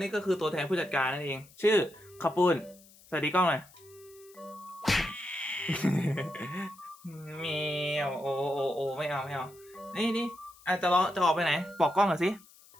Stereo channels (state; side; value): noise; left; hiss, 25 dB below the sound